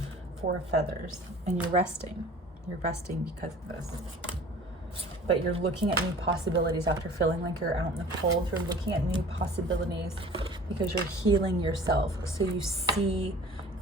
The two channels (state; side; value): normal; both; correlation 0.45